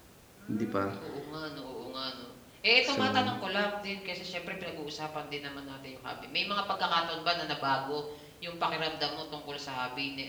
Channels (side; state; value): both; identical; correlation 1.00